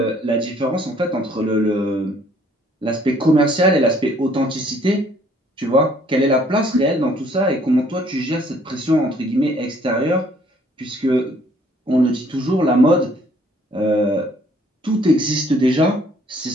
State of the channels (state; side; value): normal; both; correlation 0.61